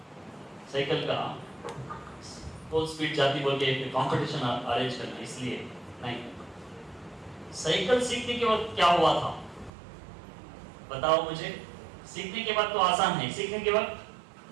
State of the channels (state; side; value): drops out; left; at 9.7 s